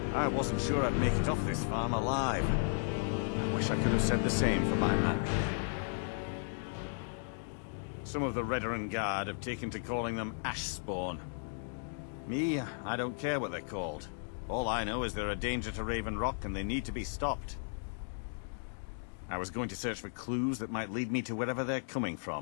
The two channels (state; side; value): silent; right; digital silence